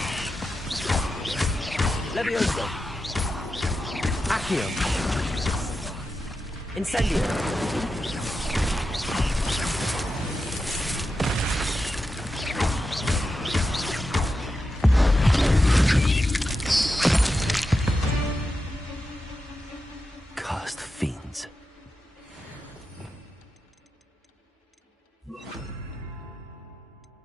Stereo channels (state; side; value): normal; both; correlation 0.89